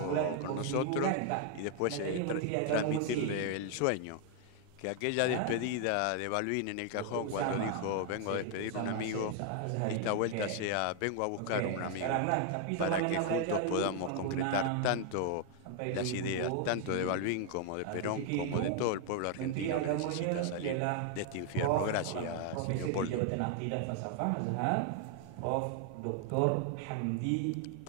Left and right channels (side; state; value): both; different; correlation 0.00